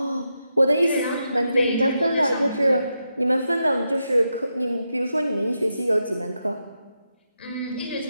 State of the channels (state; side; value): inverted; both; correlation -0.86